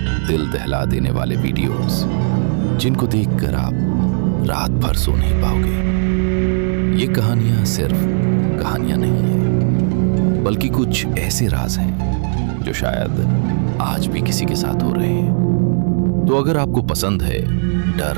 दिल दहला देने वाले वीडियोस जिनको देखकर आप रात भर सो नहीं पाओगे। ये कहानियां सिर्फ कहानियां नहीं हैं, बल्कि कुछ ऐसे राज हैं जो शायद आज भी किसी के साथ हो रहे हैं। तो अगर आपको पसंद है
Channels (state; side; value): silent; left; 68 dB below the other